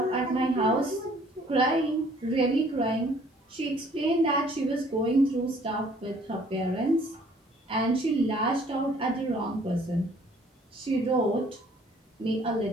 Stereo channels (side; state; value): both; normal; correlation 0.58